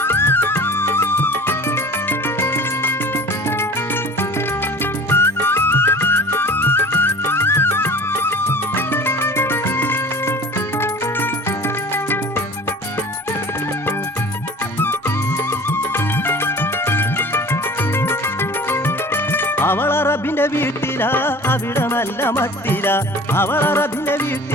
അവളറബിന്റെ വീട്ടിലാ അവിടെ നല്ല മട്ടില അവളറബിന്റെ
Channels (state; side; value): normal; both; correlation 0.42